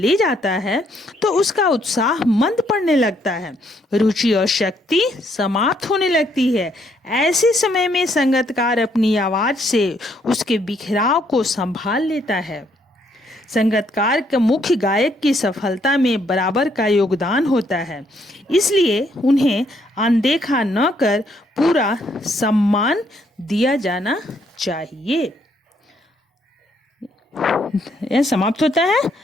जाता है, तो उसका उत्साह मंद पड़ने लगता है, रुचि और शक्ति समाप्त होने लगती है। ऐसे समय में संगीतकार अपनी आवाज से उसके बिखराव को संभाल लेता है। संगीतकार के मुख्य गायक की सफलता में बराबर का योगदान होता है, इसलिए उन्हें अनदेखा न कर पूरा सम्मान दिया जाना चाहिए। यह समाप्त होता है।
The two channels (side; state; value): both; normal; correlation 0.70